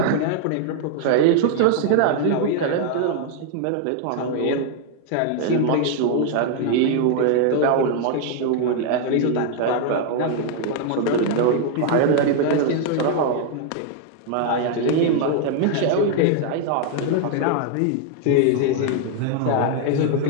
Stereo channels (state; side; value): different; both; correlation 0.00